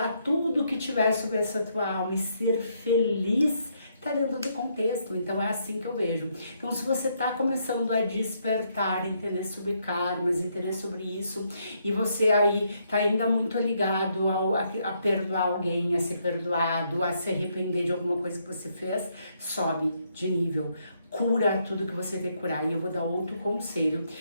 tudo que tiver sobre essa tua alma e ser feliz, tá dentro do contexto. Então é assim que eu vejo. Então se você tá começando a despertar, entender sobre karmas, entender sobre isso, e você aí tá ainda muito ligado a perdoar alguém, a ser perdoado, a se arrepender de alguma coisa que você fez, sobe de nível. Cura tudo que você tem que curar. E eu vou dar outro conselho.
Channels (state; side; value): inverted; both; correlation -0.74